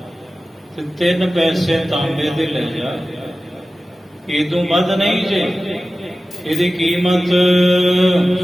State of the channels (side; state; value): both; normal; correlation 0.95